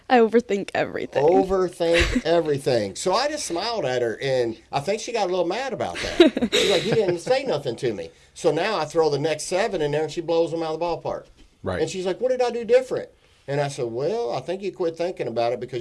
I overthink everything. Overthink everything. So I just smiled at her, and I think she got a little mad about that. She's like, he didn't say nothing to me. So now I throw the next 7 in there, and she blows them out of the ballpark. Right. And she's like, what did I do different? And I said, well, I think you quit thinking about it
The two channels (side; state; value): both; identical; correlation 1.00